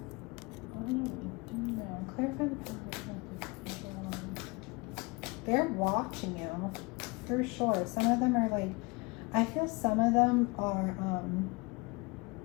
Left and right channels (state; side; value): quieter; right; 27.1 dB